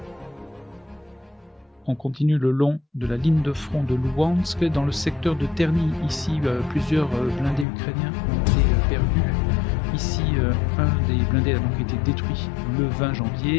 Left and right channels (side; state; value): right; drops out; at 7.7 s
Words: On continue le long de la ligne de front de Luhansk. Dans le secteur de Terny, ici, plusieurs blindés ukrainiens ont été perdus. Ici, un des blindés a donc été détruit le 20